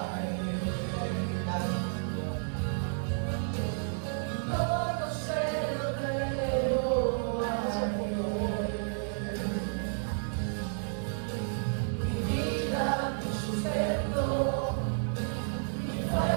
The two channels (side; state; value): left; silent; digital silence